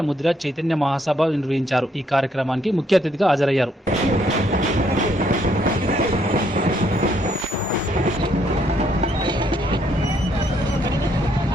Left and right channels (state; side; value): normal; both; correlation 0.71